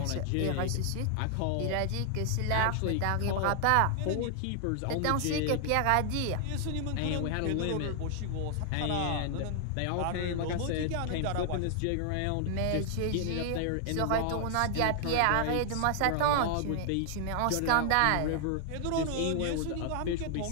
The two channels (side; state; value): both; different; correlation 0.00